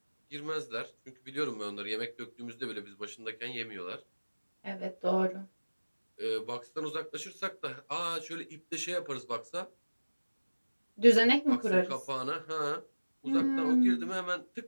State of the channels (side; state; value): both; inverted; correlation -1.00